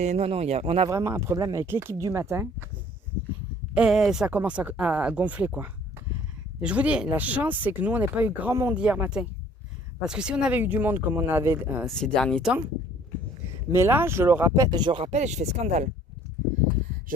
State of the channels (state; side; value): normal; both; correlation 0.55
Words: on a vraiment un problème avec l'équipe du matin. Et ça commence à gonfler, quoi. Et je vous dis, la chance, c'est que nous, on n'a pas eu grand monde hier matin. Parce que si on avait eu du monde comme on avait ces derniers temps, mais là, je rappelle et je fais scandale.